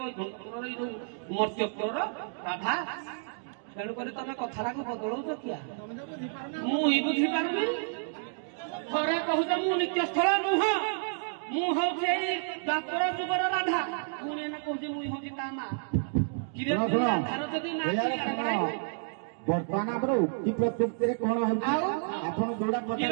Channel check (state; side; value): silent; left; digital silence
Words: ବୈକୁଣ୍ଠପୁରର ଏଇ ଯୋଉ ମର୍ତ୍ତ୍ୟପୁରର ରାଧା। ତେଣୁକରି ତମେ କଥାଟାକୁ ବଦଳଉଛ କିଆ ମୁଁ ହିଁ ବୁଝିପାରୁନି। ଥରେ କହୁଛ ମୁଁ ନିତ୍ୟସ୍ଥଳ ନୁହଁ ମୁଁ ହଉଛି ଏଇ ଦ୍ୱାପର ଯୁଗର ରାଧା ପୁଣି ଏନା କହୁଛି ମୁଁ ହଉଛି ତା ମା। ରାଧାର ଯଦି ନା ବର୍ତ୍ତମାନ ଆମର ଉକ୍ତି ପ୍ରତ୍ୟୁକ୍ତିରେ କଣ ହଉଛି ଆପଣ ଯୋଉଟା